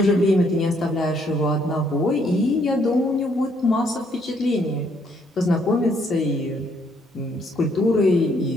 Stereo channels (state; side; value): normal; both; correlation 0.69